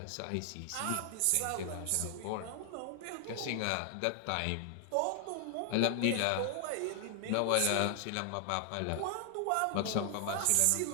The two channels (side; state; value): both; different; correlation 0.00